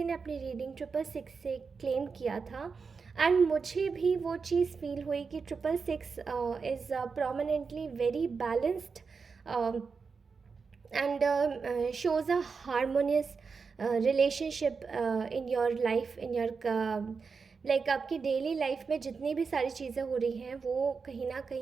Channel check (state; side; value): quieter; left; 5.1 dB